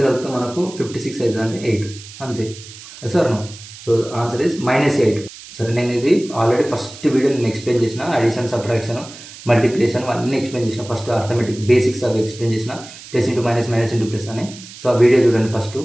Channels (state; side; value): noise; right; hiss, 16 dB below the sound